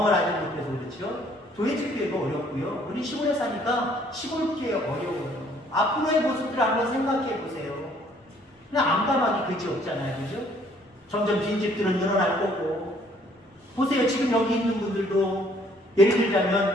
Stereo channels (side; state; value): both; normal; correlation 0.61